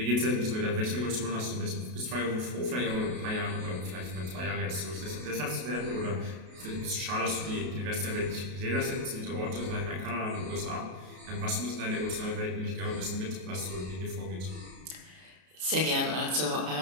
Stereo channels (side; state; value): left; late; 32 ms